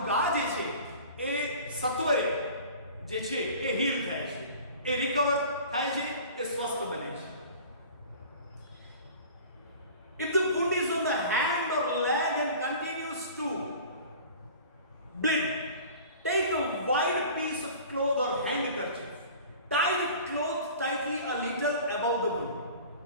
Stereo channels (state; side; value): inverted; both; correlation -0.42